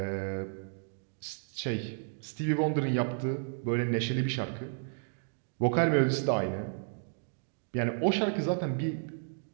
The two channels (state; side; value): silent; left; digital silence